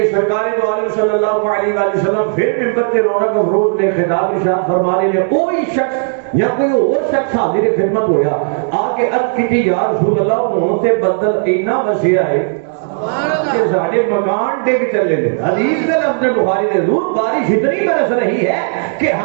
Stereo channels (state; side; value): silent; left; digital silence